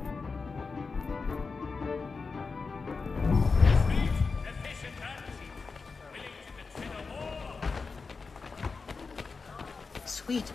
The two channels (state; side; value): quieter; right; 4.5 dB